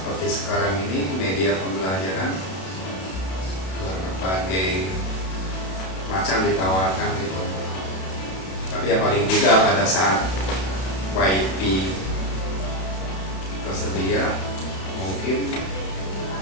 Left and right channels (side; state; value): right; late; 32 ms